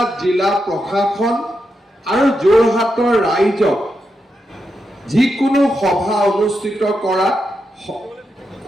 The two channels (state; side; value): normal; both; correlation 0.85